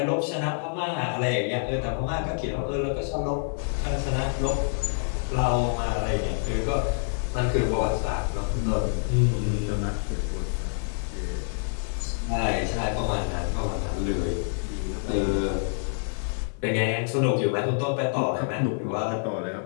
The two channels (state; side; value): silent; right; 60 dB below the other